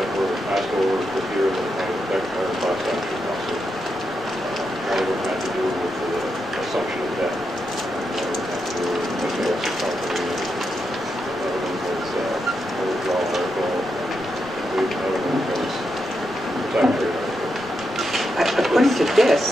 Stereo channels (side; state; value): both; normal; correlation 0.84